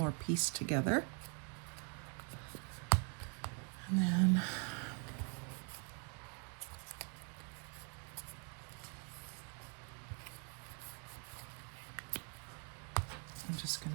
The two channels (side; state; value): left; quieter; 37.0 dB